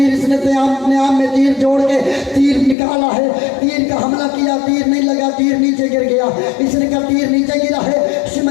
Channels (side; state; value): right; drops out; at 2.8 s